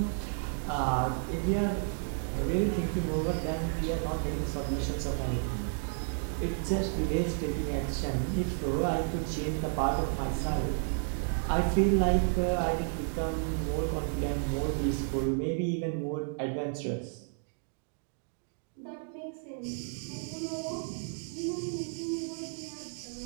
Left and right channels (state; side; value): silent; left; 56 dB below the other